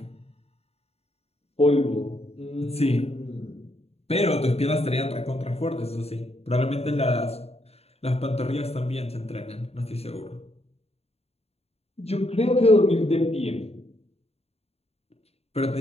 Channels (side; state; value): right; late; 0.30 ms